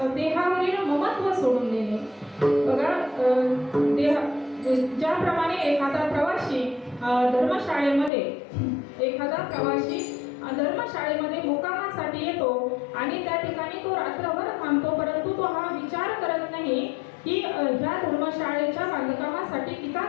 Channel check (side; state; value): right; drops out; at 8.1 s